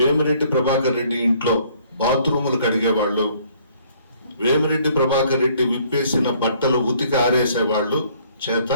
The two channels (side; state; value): both; inverted; correlation -0.61